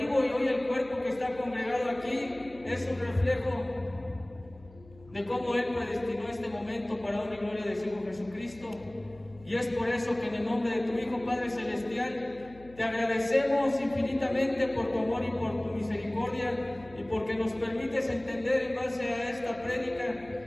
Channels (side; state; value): left; noise; hum, 23 dB below the sound